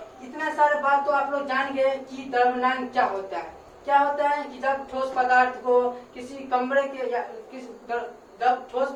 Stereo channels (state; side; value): identical; both; correlation 1.00